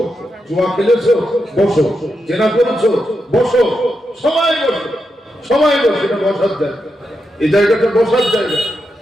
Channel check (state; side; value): normal; both; correlation 0.86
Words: জুয়া খেলেছো বসো, জেনা করেছো বসো, সবাই বসো, সবাই বসে। এটা বসার জায়গা, এই জায়গাটা বসার জায়গা।